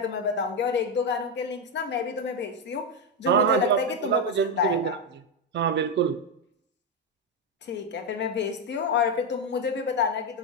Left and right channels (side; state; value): both; normal; correlation 0.06